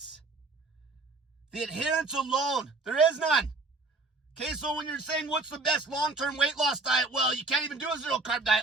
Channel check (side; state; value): left; quieter; 3.5 dB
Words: The adherence alone, there is none. Okay, so when you're saying what's the best long-term weight loss diet, well, you can't even do a zero-carb